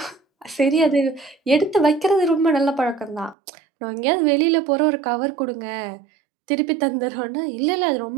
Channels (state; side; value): drops out; left; at 3.4 s